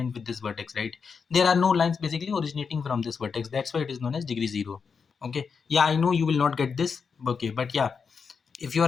with this vertex, right? There are no lines basically originating from this vertex. That's why it is known as degree 0. Okay. Yeah, I know you will not get this. Okay, but yeah, if you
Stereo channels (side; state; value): right; quieter; 5.7 dB